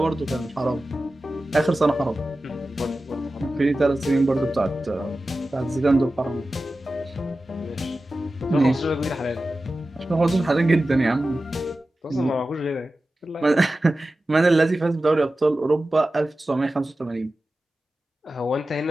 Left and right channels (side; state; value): both; normal; correlation 0.94